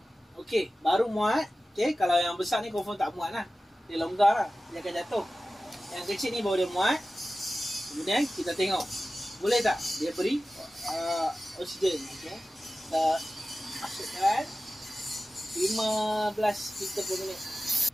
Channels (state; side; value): normal; both; correlation 0.95